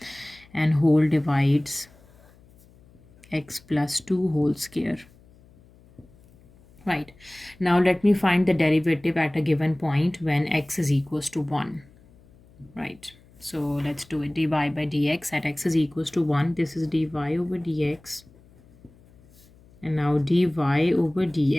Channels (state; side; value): noise; left; hum, 27 dB below the sound